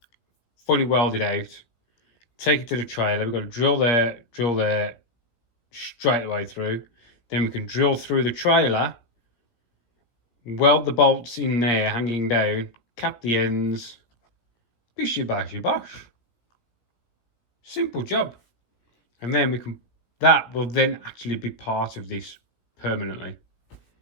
fully welded out. Take it to the trailer. We've got to drill there, straight the way through. Then we can drill through the trailer, weld the bolts in there, hanging down, cap the ends. Bishy bashy bosh. Simple job. And then that will then actually be part of this permanently.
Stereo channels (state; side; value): late; right; 17 ms